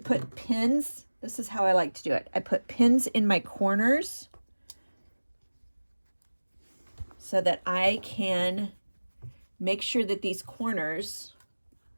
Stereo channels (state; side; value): inverted; both; correlation -1.00